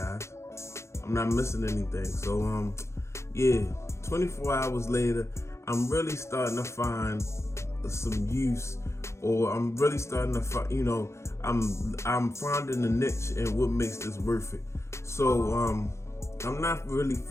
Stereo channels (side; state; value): right; late; 0.13 ms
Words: I'm not missing anything. So, yeah, 24 hours later, I'm really starting to find some use, or I'm really starting to find, you know, I'm finding a niche and what makes this worth it. So, I'm not really